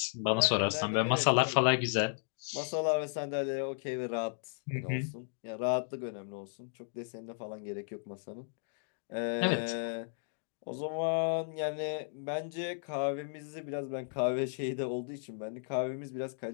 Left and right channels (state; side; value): silent; right; digital silence